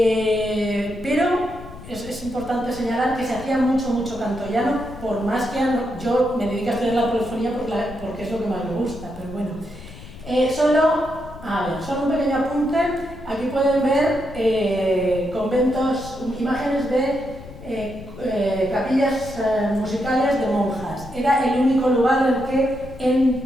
es importante señalar que se hacía mucho canto llano, por más que yo me dedico a estudiar la polifonía porque es lo que más me gusta, pero bueno. Solo un pequeño apunte. Aquí pueden ver conventos, imágenes de capillas musicales de monjas. Era el único lugar en el que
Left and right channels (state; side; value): noise; left; rumble, 16 dB below the sound